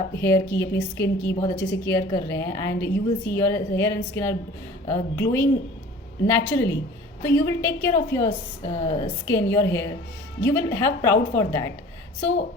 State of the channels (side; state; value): both; normal; correlation 0.45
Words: हेयर की, अपनी स्किन की बहुत अच्छे से केयर कर रहे हैं and you will see your hair and skin are glowing naturally, so you will take care of your skin, your hair, you will have proud for that. So